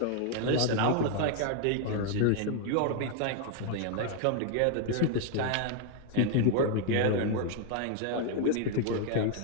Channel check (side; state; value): both; different; correlation 0.00